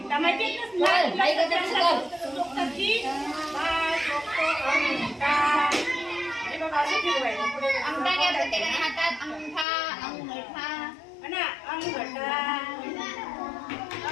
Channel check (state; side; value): drops out; right; at 9.7 s